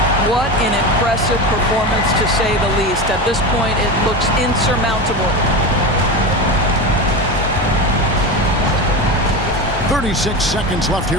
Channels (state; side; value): normal; both; correlation 0.23